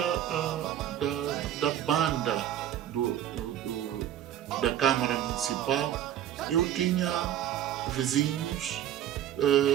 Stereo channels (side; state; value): left; quieter; 11.3 dB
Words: da banda da Câmara Municipal, eu tinha vizinhos